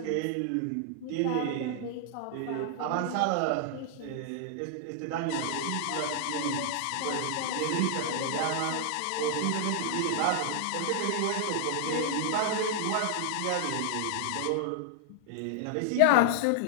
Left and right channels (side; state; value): both; different; correlation 0.00